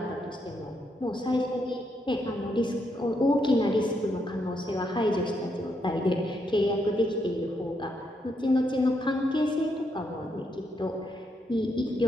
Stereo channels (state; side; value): normal; both; correlation 0.78